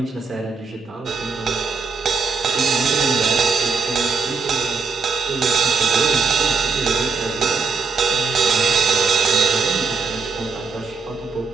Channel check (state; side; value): quieter; left; 4.7 dB